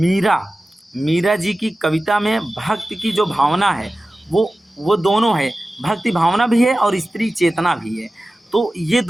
जी की कविता में भक्त की जो भावना है वो दोनों है, भक्ति भावना भी है और स्त्री चेतना भी है, तो ये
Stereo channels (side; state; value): both; normal; correlation 0.95